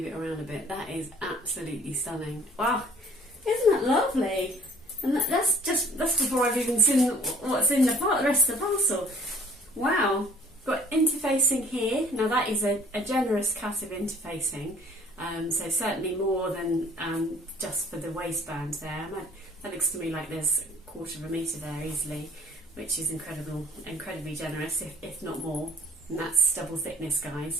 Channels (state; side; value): normal; both; correlation 0.54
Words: it around a bit. That is absolutely stunning. Wow, isn't that lovely? And that's before I've even seen what's in the rest of the parcel. Wow, got interfacing here. Now that is a generous cut of interfacing, so certainly more than just for the waistband there. That looks to me like there's 1/4 metre there easily, which is incredibly generous, if not more. And that's double thickness,